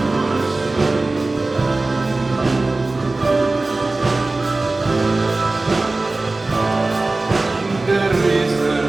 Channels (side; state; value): left; quieter; 3.2 dB